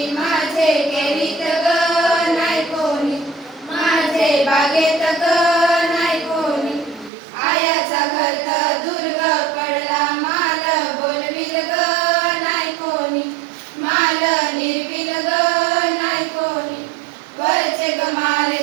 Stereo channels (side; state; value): left; drops out; at 7.1 s